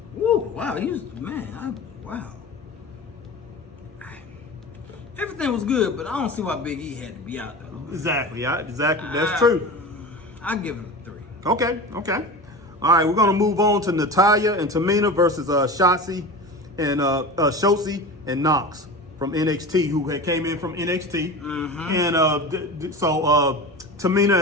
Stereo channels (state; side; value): normal; both; correlation 0.31